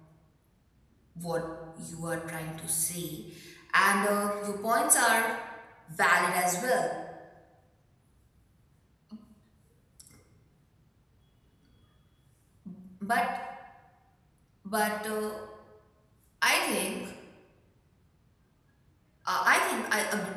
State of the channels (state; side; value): identical; both; correlation 1.00